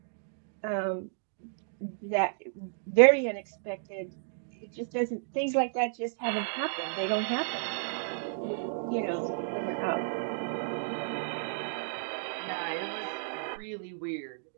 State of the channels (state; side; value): silent; left; digital silence